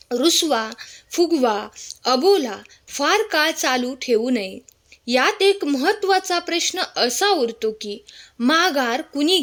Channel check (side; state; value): both; identical; correlation 1.00